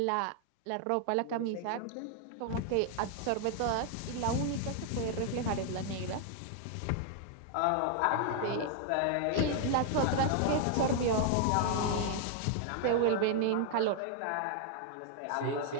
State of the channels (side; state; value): both; different; correlation 0.00